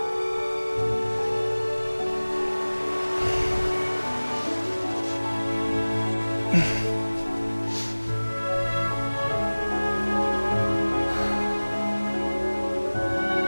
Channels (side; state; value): both; inverted; correlation -1.00